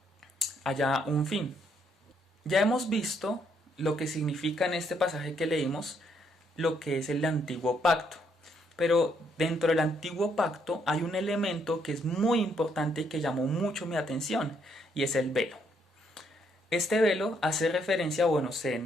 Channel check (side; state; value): both; normal; correlation 0.72